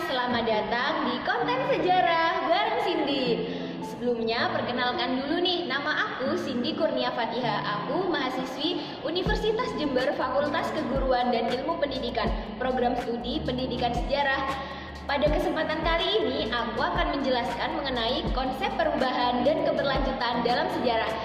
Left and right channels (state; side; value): identical; both; correlation 1.00